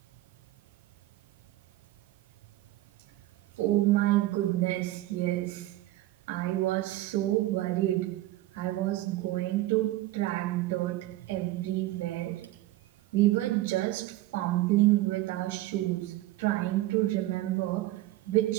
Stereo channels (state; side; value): quieter; left; 16.5 dB